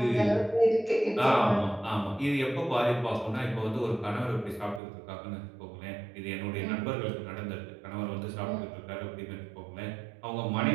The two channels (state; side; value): drops out; left; at 4.8 s